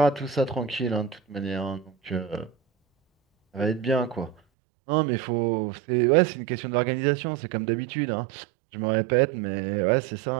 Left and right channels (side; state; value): left; drops out; at 4.4 s